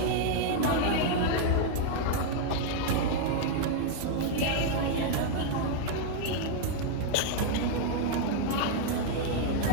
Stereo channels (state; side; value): different; both; correlation 0.00